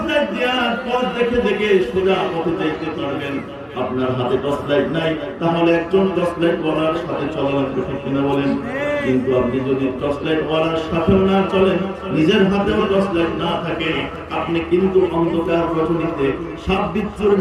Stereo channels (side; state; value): both; identical; correlation 1.00